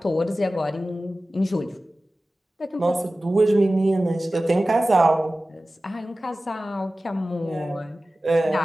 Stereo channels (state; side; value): normal; both; correlation 0.96